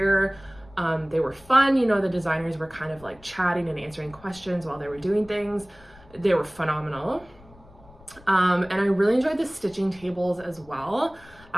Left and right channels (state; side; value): noise; left; rumble, 24 dB below the sound